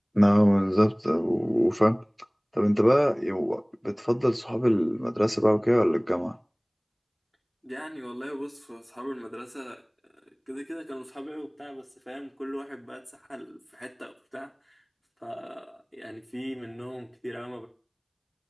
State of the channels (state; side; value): identical; both; correlation 1.00